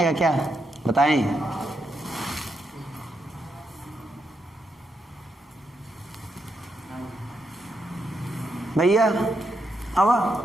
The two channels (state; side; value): normal; both; correlation 0.81